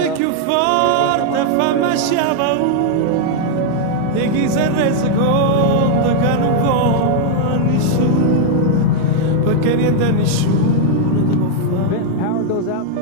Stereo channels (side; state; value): both; different; correlation 0.00